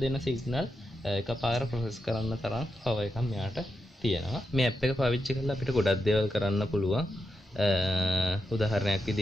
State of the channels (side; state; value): both; normal; correlation 0.86